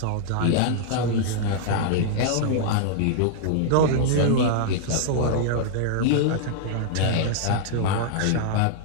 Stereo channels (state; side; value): different; both; correlation -0.01